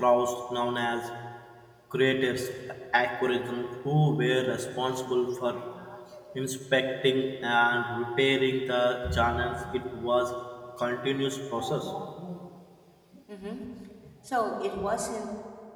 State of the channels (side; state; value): both; identical; correlation 1.00